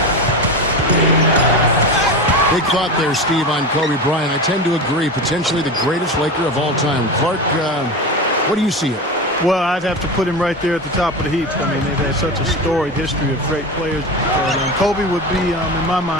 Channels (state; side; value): normal; both; correlation 0.24